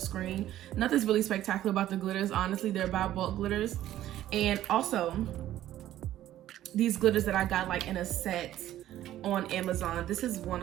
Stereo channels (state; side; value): quieter; left; 13.2 dB